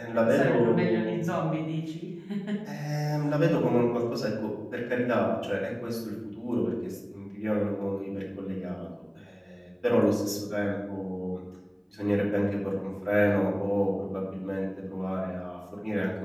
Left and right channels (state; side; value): identical; both; correlation 1.00